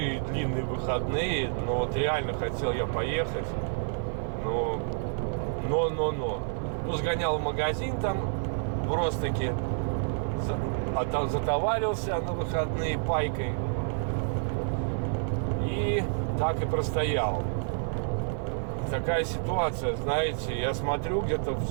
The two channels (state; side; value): silent; left; 59 dB below the other